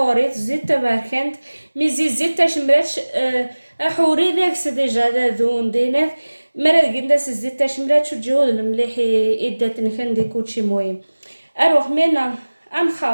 zeta marquant, mais zeta chmrach, horet c'est déjà la zone d'énerve. Mais regarde ce zeta chmrach ou jehol le mlehi edat nkhandi كلشي مهم. اروح منا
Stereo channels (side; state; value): both; inverted; correlation -1.00